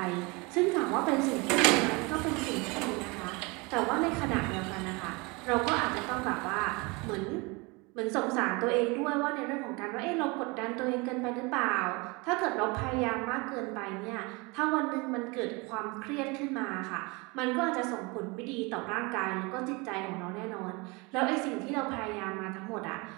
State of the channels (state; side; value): quieter; left; 27.1 dB